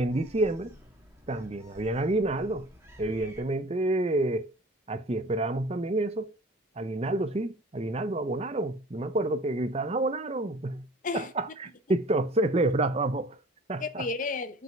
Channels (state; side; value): normal; both; correlation 0.46